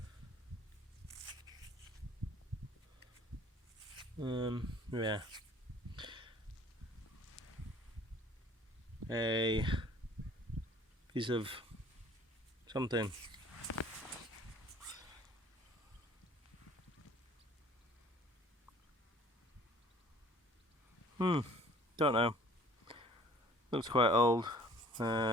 Yeah. A piece of something. Don't know. Looks quite old.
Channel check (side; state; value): both; normal; correlation 0.52